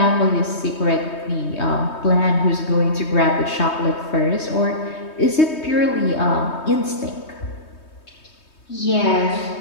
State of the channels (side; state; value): right; late; 3.2 ms